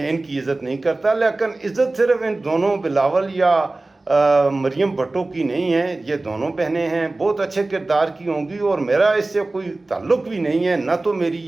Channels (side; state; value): left; quieter; 3.0 dB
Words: ان کی عزت نہیں کرتا، لیکن عزت صرف ان دونوں بلاول یا مریم بھٹو کی نہیں ہے۔ یہ دونوں بہنیں ہیں، بہت اچھے کردار کی ہوں گی، اور میرا اس سے کوئی تعلق بھی نہیں ہے۔ نہ تو میری